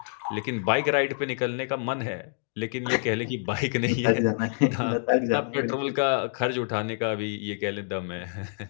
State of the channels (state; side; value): silent; right; digital silence